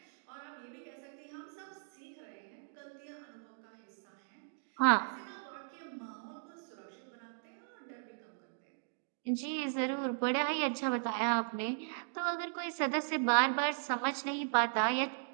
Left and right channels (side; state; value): left; silent; digital silence